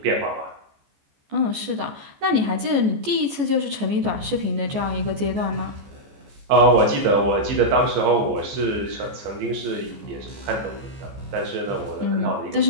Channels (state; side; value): late; left; 14 ms